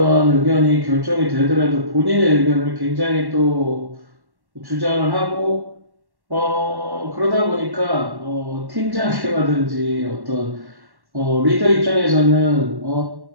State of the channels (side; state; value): left; late; 1.1 ms